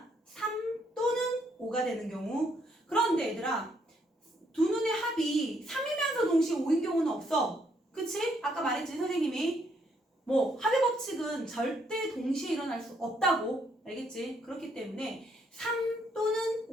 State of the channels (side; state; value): both; normal; correlation 0.71